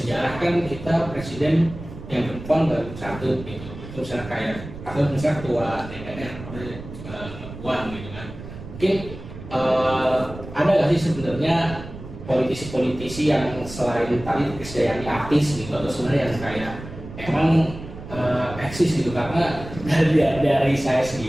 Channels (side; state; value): right; noise; rumble, 13 dB below the sound